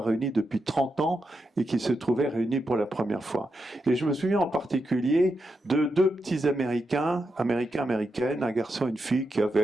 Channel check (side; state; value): both; normal; correlation 0.86